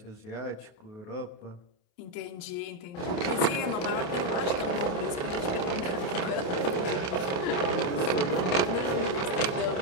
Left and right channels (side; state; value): right; late; 28 ms